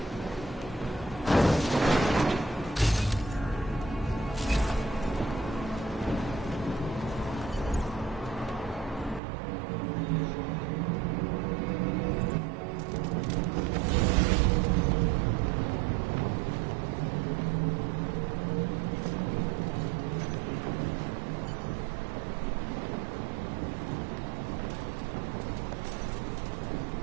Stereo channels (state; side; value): drops out; left; at 9.2 s